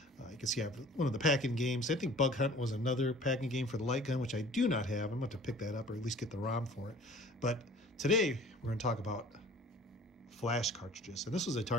You can see I have one of the packing games. I think Bug Hunt was another packing game for the light gun, which I do not have. I'm going to pick that up or at least get the ROM for it. But today, we're going to talk about flash cartridges. And this was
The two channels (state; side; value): normal; both; correlation 0.48